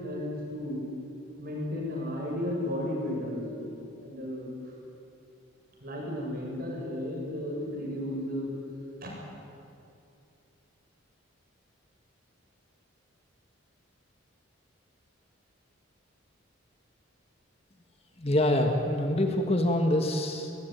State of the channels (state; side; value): normal; both; correlation 0.56